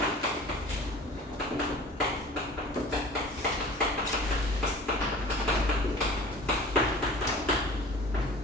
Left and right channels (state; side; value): normal; both; correlation 0.43